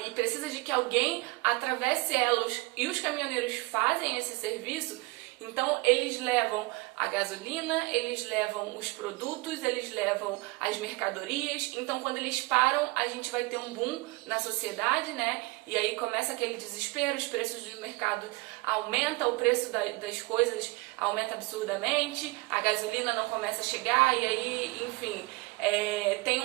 e precisa de que alguém atravesse elas, e os caminhoneiros fazem esse serviço. Então eles levam a gasolina, eles levam os produtos, eles levam as mercadorias. Então quando eles param, a gente vai ter um boom na sociedade, né? E aí começa aquele desespero, os preços do mercado aumentam, o preço das coisas aumenta absurdamente, a gasolina não começa a chegar e aí, enfim, tem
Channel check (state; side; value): quieter; left; 24.6 dB